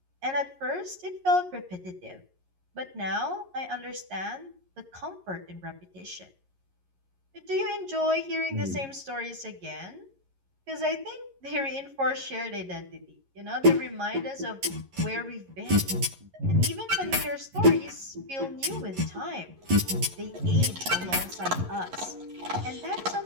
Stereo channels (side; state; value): left; late; 11 ms